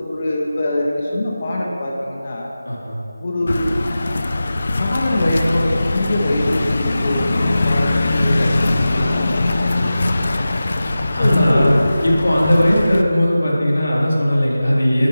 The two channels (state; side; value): inverted; both; correlation -0.95